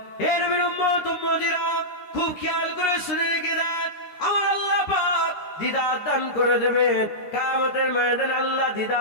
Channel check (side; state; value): right; late; 13 ms